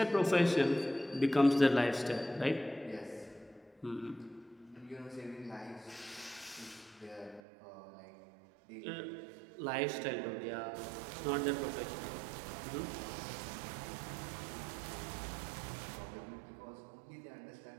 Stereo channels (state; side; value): drops out; left; at 7.4 s